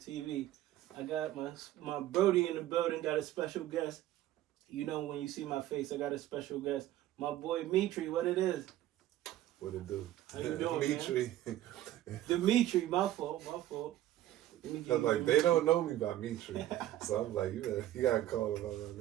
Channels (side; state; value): left; quieter; 13.6 dB